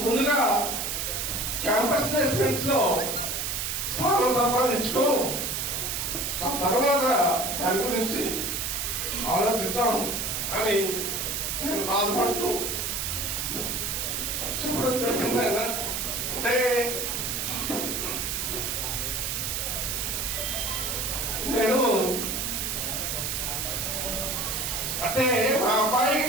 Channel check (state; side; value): noise; right; hiss, 1 dB below the sound